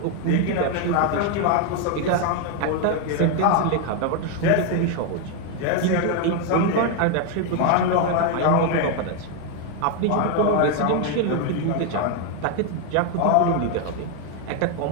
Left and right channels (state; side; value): different; both; correlation 0.01